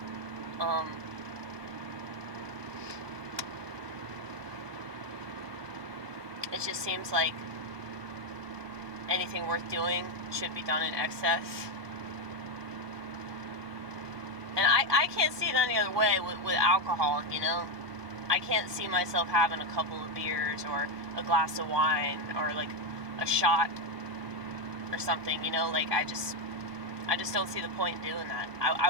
it just seems like anything worth doing should be done in excess. And I can't see it any other way with alcohol, you know? I can't see myself having a couple of beers or a glass of wine or like a shot or something, you know? Like I just don't see the point in doing that. I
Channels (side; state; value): left; late; 1.2 ms